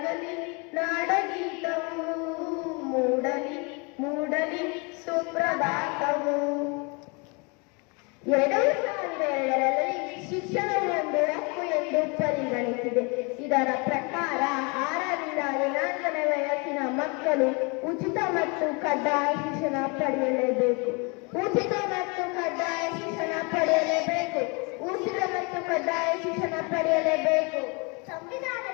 ನಾಡಗೀತವು, ಮೂಡಲಿ ಮೂಡಲಿ ಸುಪ್ರಭಾತವು. 2002ರಲ್ಲಿ ಶಿಕ್ಷಣವು ಒಂದು ಹಕ್ಕು ಎಂದು ಪರಿಗಣಿಸಿದೆ. ಇದರ ಪ್ರಕಾರ 6ರಿಂದ 14 ವಯಸ್ಸಿನ ಮಕ್ಕಳು ಉಚಿತ ಮತ್ತು ಕಡ್ಡಾಯ ಶಿಕ್ಷಣ ಪಡೆಯಲೇಬೇಕು. ಉಚಿತ ಮತ್ತು ಕಡ್ಡಾಯ ಶಿಕ್ಷಣ ಪಡೆಯಲೇಬೇಕು. ಉಚಿತ ಮತ್ತು ಕಡ್ಡಾಯ ಶಿಕ್ಷಣ ಪಡೆಯಲೇಬೇಕು.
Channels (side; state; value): right; quieter; 31.1 dB